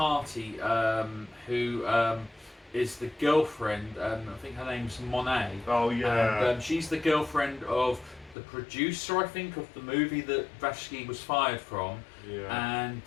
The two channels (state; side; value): drops out; right; at 8.3 s